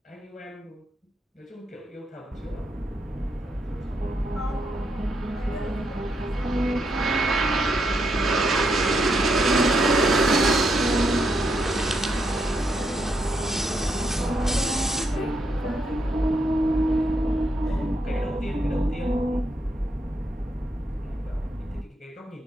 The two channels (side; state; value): both; normal; correlation 0.79